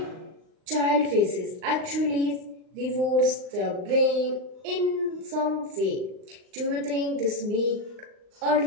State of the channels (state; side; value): late; left; 39 ms